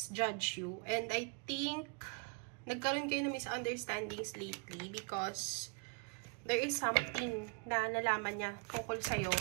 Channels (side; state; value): left; quieter; 36.3 dB